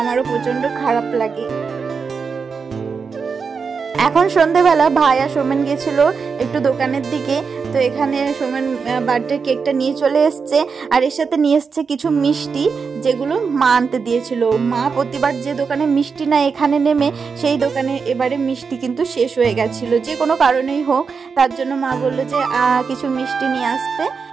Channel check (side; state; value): left; quieter; 5.4 dB